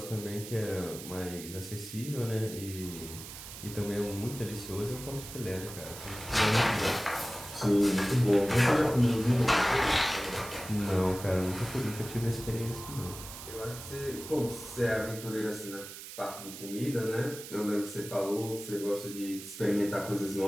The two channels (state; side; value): noise; right; hiss, 12 dB below the sound